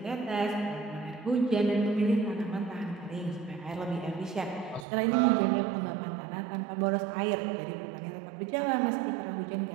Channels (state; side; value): drops out; left; at 4.9 s